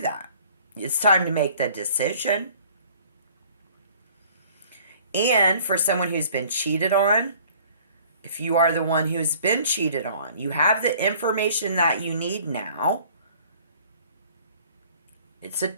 that. It's time to make the decision. And for someone who's been cheated on, if you are the one who's been cheated on, you have the information that you need now. It's a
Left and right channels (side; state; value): both; inverted; correlation -0.53